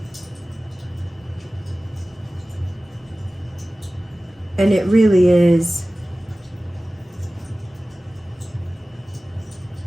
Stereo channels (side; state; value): both; normal; correlation 0.97